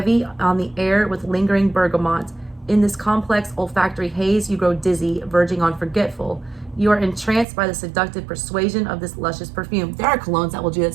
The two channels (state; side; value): drops out; left; at 7.5 s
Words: on the air with lingering bergamot. In this complex olfactory haze, you grow dizzy, verging on forgetful. You are entranced by the seductive persuasion of this luscious perfume. There are colognes that will do that